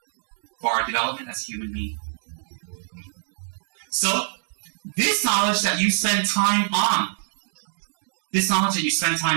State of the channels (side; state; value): left; silent; 59 dB below the other